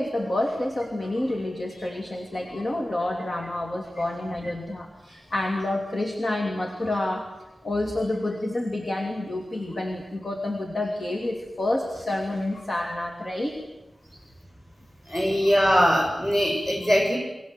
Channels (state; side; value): normal; both; correlation 0.95